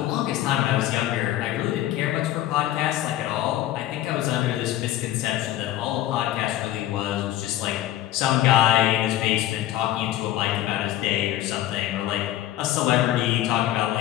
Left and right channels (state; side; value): quieter; right; 13.8 dB